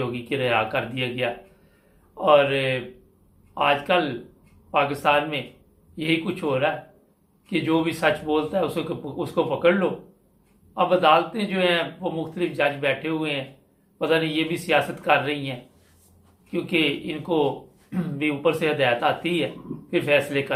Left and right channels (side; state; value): both; identical; correlation 1.00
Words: कि रिहा कर दिया गया। और आजकल पाकिस्तान में यही कुछ हो रहा है कि जो भी सच बोलता है उसको पकड़ लो। अब अदालतें जो हैं वो मुख्तलिफ जज बैठे हुए हैं, पता नहीं ये भी सियासत कर रही हैं, क्योंकि इनको भी ऊपर से हदायत आती है फिर फैसले